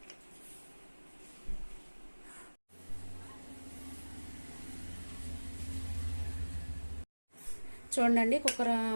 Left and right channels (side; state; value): both; inverted; correlation -1.00